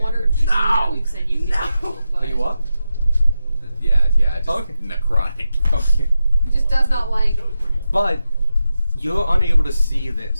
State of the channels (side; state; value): both; inverted; correlation -0.90